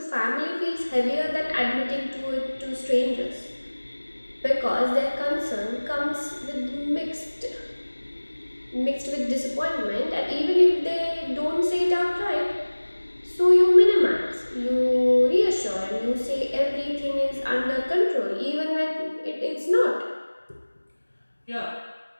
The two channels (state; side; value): inverted; both; correlation -1.00